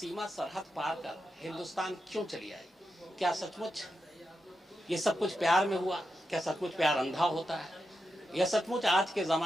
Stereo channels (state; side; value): normal; both; correlation 0.88